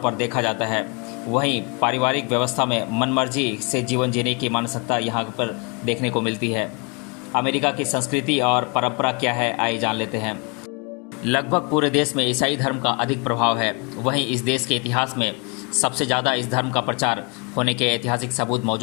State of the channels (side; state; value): right; quieter; 33.2 dB